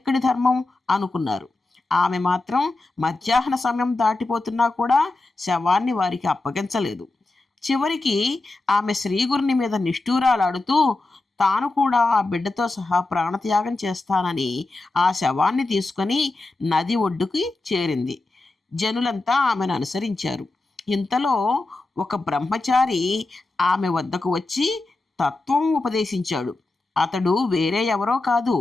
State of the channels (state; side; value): quieter; right; 3.1 dB